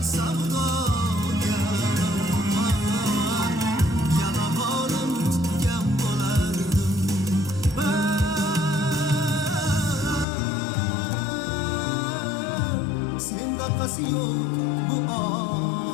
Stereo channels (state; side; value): drops out; right; at 10.2 s